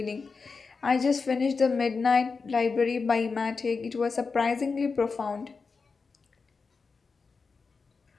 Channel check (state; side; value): quieter; right; 4.7 dB